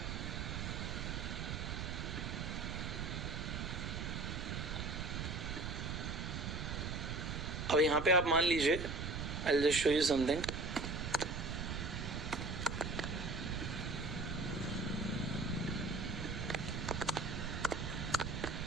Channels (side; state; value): right; noise; rumble, 3 dB below the sound